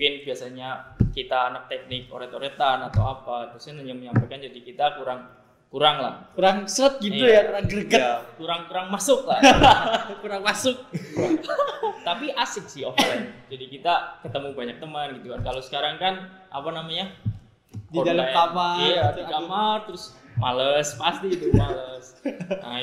biasanya kita anak teknik oret-oretan atau apa, dosen hanya menyampaikan, jadi kita kurang lah. Kurang seret gitu Iya. ya, kurang greget. Ya, Kurang masuk lah. Kurang masuk. Tapi asik sih offline. Jadi kita ketemu banyak teman gitu kan. Kalau sekarang kan apa namanya? Di dalam kamar. Iya, gitu, di aduh. kamar terus males, pasti itu males. Nah,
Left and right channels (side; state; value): both; identical; correlation 1.00